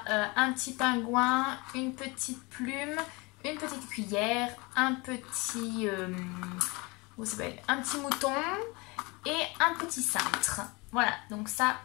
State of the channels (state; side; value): quieter; right; 26.3 dB